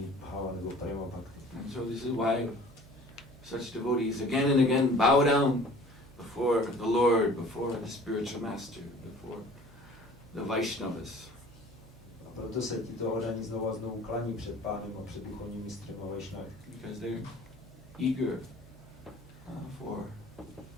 bhava nebo prema bhakti. And so this is why such devotees again and again bow down before the Lord, before the spiritual master, before the Vaishnavas. A proto se tito oddaní znovu a znovu klaní před pánem a před duchovním mistrem a Vaishnavy. Because they're eager for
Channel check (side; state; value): both; normal; correlation 0.48